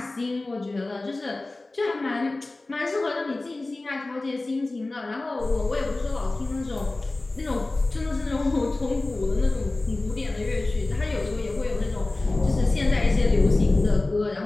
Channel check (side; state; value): right; quieter; 3.0 dB